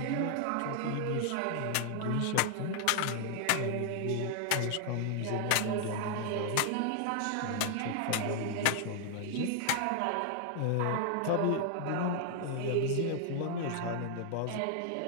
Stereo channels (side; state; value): both; different; correlation 0.00